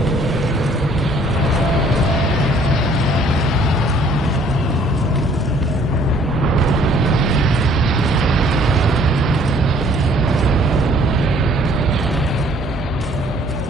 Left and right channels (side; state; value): both; normal; correlation 0.59